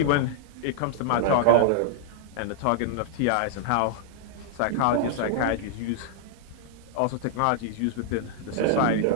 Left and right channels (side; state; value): both; different; correlation -0.01